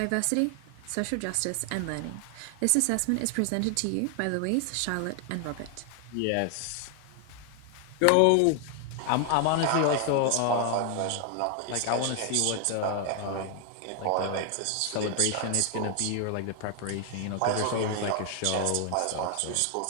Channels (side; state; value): both; different; correlation 0.00